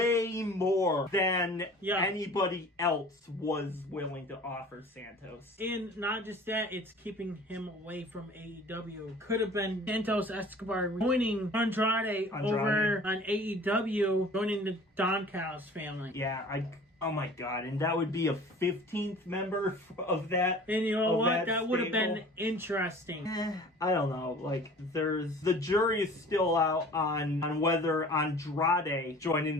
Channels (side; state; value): both; normal; correlation 0.45